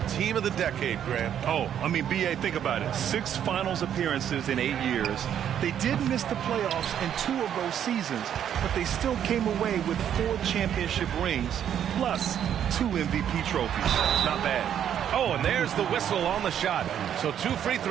team of the decade, Grant. Oh, I mean, B.A., think about it. 6 finals appearances in 8 years. They did miss the playoffs in 2 of those seasons, but they still came away with 4 championship rings, plus 2 MVP trophies. Not bad. Oh, and there's the whistle on the shot. So 2 free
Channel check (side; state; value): left; quieter; 9.6 dB